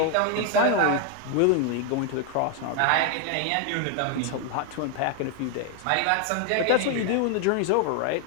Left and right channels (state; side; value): different; both; correlation 0.01